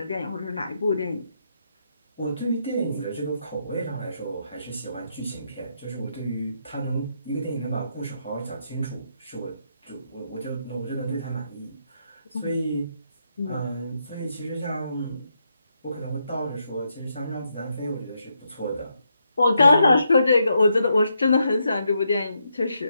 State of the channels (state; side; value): inverted; both; correlation -0.80